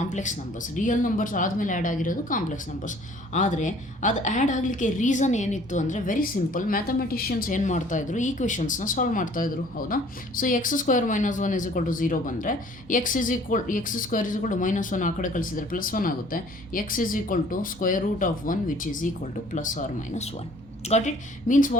numbers. Real numbers ಆದಮೇಲೆ ಆ್ಯಡ್ ಆಗಿರೋದು ಕಾಂಪ್ಲೆಕ್ಸ್ ನಂಬರ್ಸ್. ಆದರೆ ಅದು ಆ್ಯಡ್ ಆಗಲಿಕ್ಕೆ ರೀಸನ್ ಏನಿತ್ತು ಅಂದರೆ ವೆರಿ ಸಿಂಪಲ್, ಮ್ಯಾಥಮೆಟಿಷಿಯನ್ಸ್ ಏನು ಮಾಡ್ತಾಯಿದ್ರು, ಈಕ್ವೇಷನ್ಸ್ನ ಸಾಲ್ವ್ ಮಾಡ್ತಾಯಿದ್ರು, ಹೌದಾ? ಸೊ x² - 1 = 0 ಬಂದರೆ x² = -1 ಆ ಕಡೆ ಕಳಿಸಿದರೆ +1 ಆಗುತ್ತೆ. x = √1 which is equal to +or -1. Got it? Means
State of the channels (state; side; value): normal; both; correlation 0.54